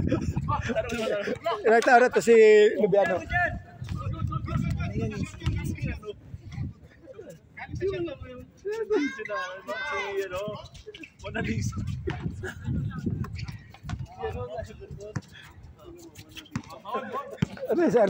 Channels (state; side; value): identical; both; correlation 1.00